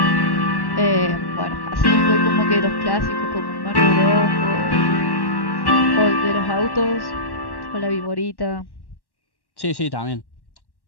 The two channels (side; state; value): right; late; 1.1 ms